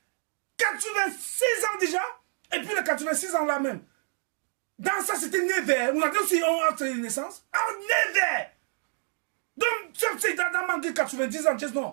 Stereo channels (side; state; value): left; silent; 56 dB below the other